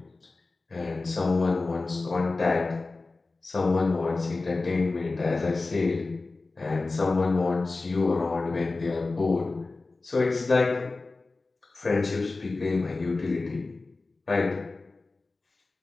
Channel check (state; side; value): quieter; right; 3.5 dB